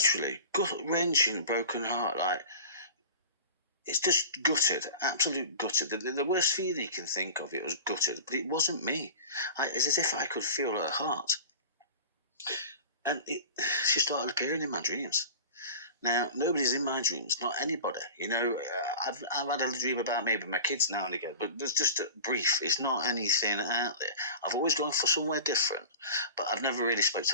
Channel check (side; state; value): both; inverted; correlation -0.36